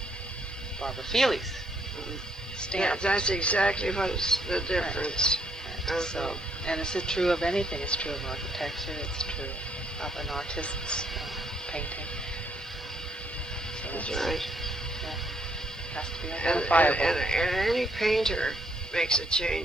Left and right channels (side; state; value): both; normal; correlation 0.70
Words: Barbara Feahley's stamp. Yeah, that's exactly what's the difference. Right. So, and it's true of anything. It's true of architecture. It's true of an artist's painting. So that's right. Yeah, it has to be identifiable. And any painter makes a